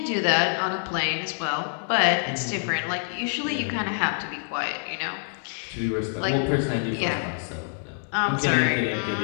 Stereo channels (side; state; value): right; silent; 61 dB below the other